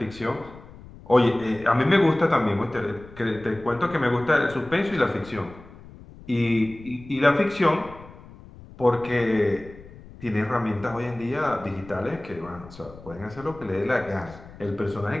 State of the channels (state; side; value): noise; left; rumble, 19 dB below the sound